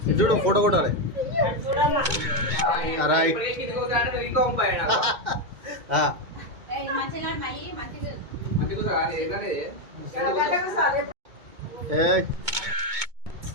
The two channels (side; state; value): left; late; 2.2 ms